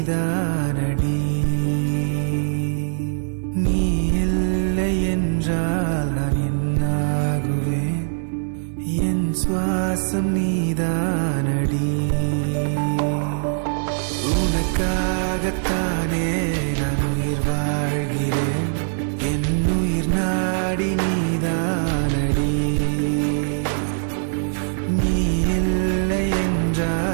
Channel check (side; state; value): left; silent; digital silence